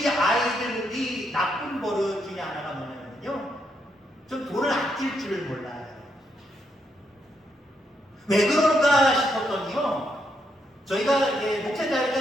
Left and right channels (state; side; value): normal; both; correlation 0.78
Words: 아이들이 나쁜 버릇 중에 하나가 뭐냐면요, 좀 돈을 아낄 줄을 몰라요. 왜 그럴까 싶었더니요, 저희가